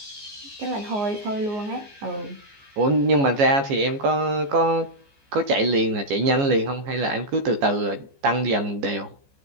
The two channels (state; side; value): late; left; 14 ms